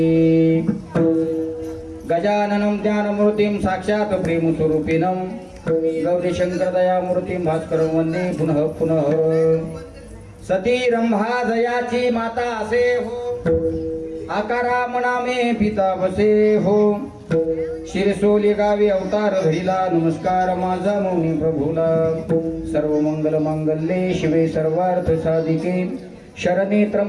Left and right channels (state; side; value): identical; both; correlation 1.00